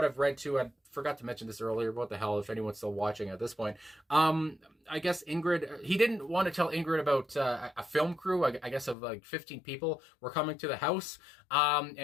I've read too, I forgot to mention this earlier, what the hell, if anyone's still watching at this point. I guess Ingrid, he didn't want to tell Ingrid about a film crew, I guess of like 15 people were coming to the house. And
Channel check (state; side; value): drops out; right; at 9.0 s